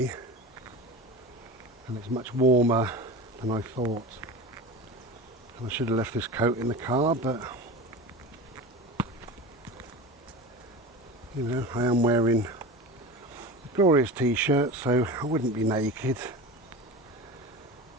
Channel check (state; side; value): normal; both; correlation 0.30